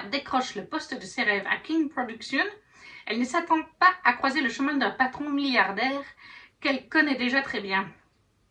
décroche le poste de ses rêves à King Production, elle ne s'attend pas à croiser le chemin d'un patron milliardaire qu'elle connaît déjà très bien.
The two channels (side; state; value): both; identical; correlation 1.00